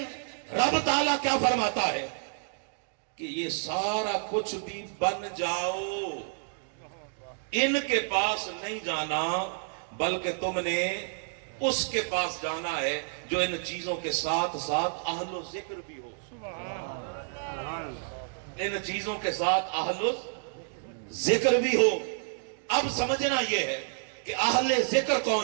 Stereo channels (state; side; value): silent; left; digital silence